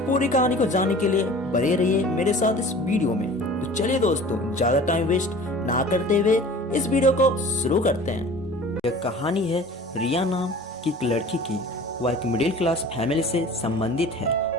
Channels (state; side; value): normal; both; correlation 0.43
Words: पूरी कहानी को जानने के लिए बने रहिए मेरे साथ इस वीडियो में। तो चलिए दोस्तों, ज्यादा टाइम वेस्ट ना करते हुए इस वीडियो को शुरू करते हैं। यह कहानी है रिया नाम की एक लड़की की। वह एक मिडिल क्लास फैमिली से संबंधित है।